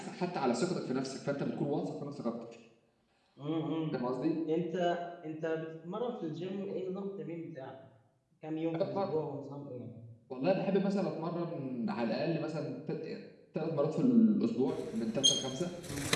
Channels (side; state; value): both; identical; correlation 1.00